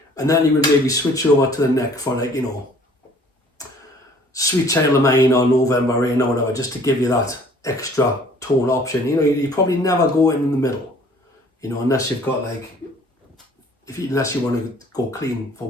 and then you would maybe switch over to the neck for, like, you know, Sweet Child of Mine or November Rain or whatever, just to give you that extra tone option. You know, you probably never go in the middle, you know, unless you've got like, unless you want to go clean for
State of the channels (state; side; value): normal; both; correlation 0.55